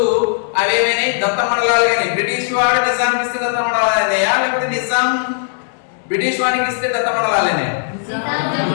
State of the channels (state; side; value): silent; right; digital silence